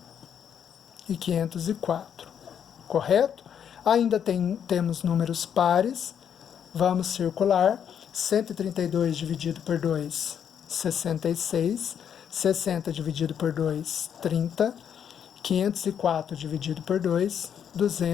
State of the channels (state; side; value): quieter; right; 8.4 dB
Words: e 504. Correto? Ainda temos números pares. Vamos circular. 132 dividido por 2, 66. 60 dividido por 2, 30. 504 dividido por 2,